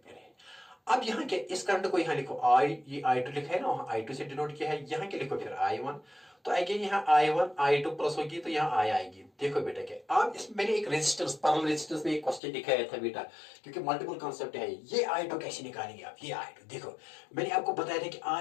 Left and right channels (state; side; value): drops out; right; at 12.4 s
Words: है. अब यहाँ क्या, इस करंट को यहाँ लिखो आई, ये I2 लिखा है ना, वहां I2 से डिनोट किया है, यहाँ क्या लिखो फिर I1। तो अगेन यहाँ I1 I2 प्लस होगी तो यहाँ I आएगी। देखो बेटा क्या, अब इसमें मैंने एक रेजिस्टेंस, पैरेलल रेजिस्टेंस में एक क्वेश्चन दिखाया था बेटा, क्योंकि मल्टीपल कॉन्सेप्ट है। ये I2 कैसे निकालेंगे आप, ये I2 देखो, मैंने आपको बताया था कि